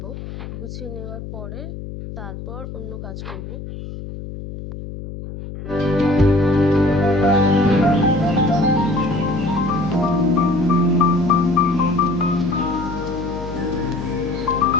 গুছিয়ে নেওয়ার পরে তারপর অন্য কাজ করব।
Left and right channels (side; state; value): left; noise; hum, 10 dB below the sound